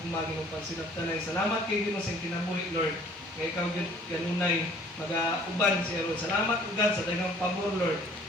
ginong pansinaptanay. Salamat kay Ginoo sa kinabuhi Lord. Kaya ikaw kanunay mag-uban siya Lord. Salamat o God sa daghang pabor Lord.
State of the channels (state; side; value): normal; both; correlation 0.55